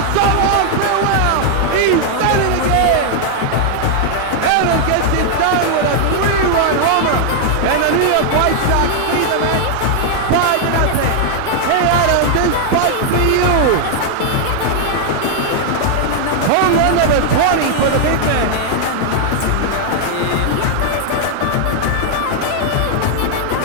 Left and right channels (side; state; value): both; different; correlation 0.00